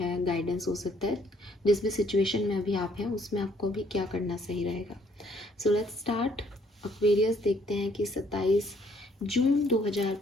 गाइडेंस हो सकता है। जिस भी सिचुएशन में अभी आप हैं उसमें आपको भी क्या करना सही रहेगा। So let's start. एक्वेरियस, देखते हैं कि 27 जून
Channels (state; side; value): normal; both; correlation 0.65